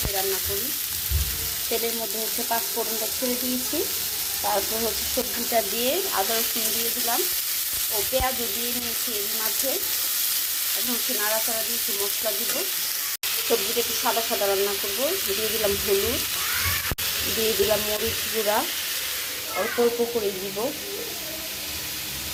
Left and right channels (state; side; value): identical; both; correlation 1.00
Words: রান্না করি। তেলের মধ্যে হচ্ছে পাঁচফোড়নটা ছেড়ে দিয়েছি, তারপর হচ্ছে সবজিটা দিয়ে আদা রসুন দিয়ে দিলাম ও পেঁয়াজও দিয়ে নিয়েছি এর মাঝে। এখন হচ্ছে নাড়াচাড়া দিয়েছি, মশলা দিব। সবজিটা একটু সাদা সাদা রান্না করব। দিয়ে দিলাম হলুদ, দিয়ে দিলাম মরিচ গুঁড়া, অল্প অল্প করে দিব